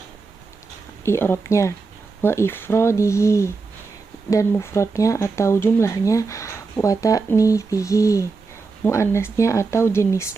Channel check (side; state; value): left; quieter; 4.3 dB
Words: i'rabnya, wa ifradihi, dan mufradnya atau jumlahnya, wa ta'nithihi, muannasnya atau